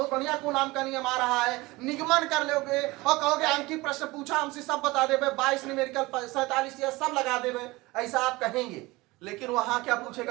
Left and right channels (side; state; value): left; quieter; 21.5 dB